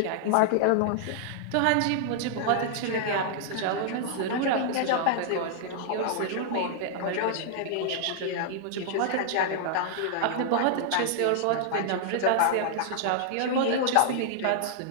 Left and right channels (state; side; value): different; both; correlation -0.01